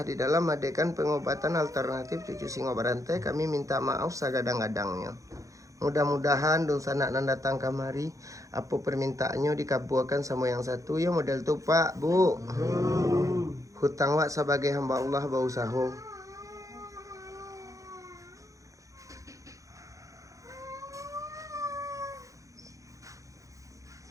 di dalam adegan pengobatan alternatif Cucu Singo Barantai, kami minta maaf sagadang-gadangnya. Mudah-mudahan dong sanak nan datang kamari apa permintaannya dikabulkan sama yang satu ya model tuh Pak Bu. Hutang wak sebagai hamba Allah bausaho.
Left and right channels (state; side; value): late; left; 0.16 ms